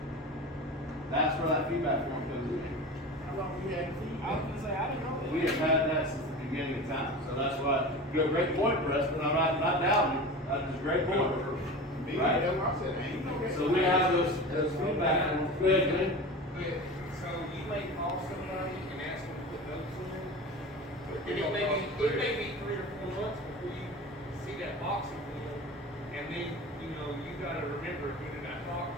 That's where that feedback form comes in. How long you had feet? I was gonna say, I didn't know that. We have had that since the beginning of time, so that's why, you have a great point, Preston, I'm not doubting it, that's just a great point. Me, Right. that's what I said, ain't no. So we have those feedback forms, go ahead, Glenn. But, so you may call somebody and ask them to put notes in there, and it may be 3 or 4 months before you see that box again, and then, you know, you gotta remember, who did I talk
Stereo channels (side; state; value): both; normal; correlation 0.32